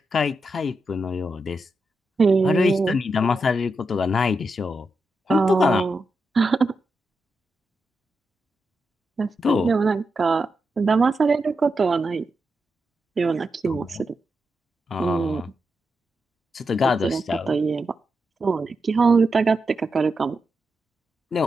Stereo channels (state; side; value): normal; both; correlation 0.87